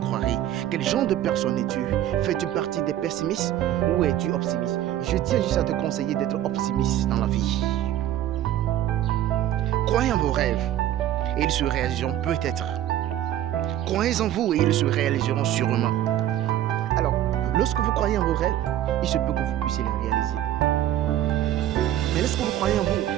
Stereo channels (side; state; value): left; quieter; 12.3 dB